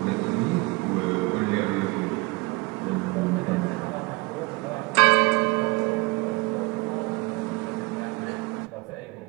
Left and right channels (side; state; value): left; quieter; 24.5 dB